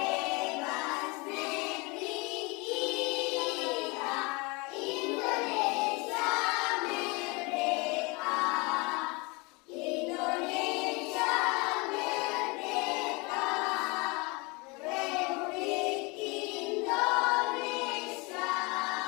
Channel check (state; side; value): quieter; right; 27.4 dB